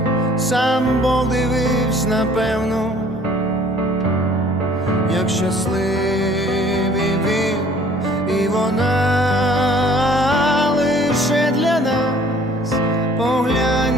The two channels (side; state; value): both; normal; correlation 0.54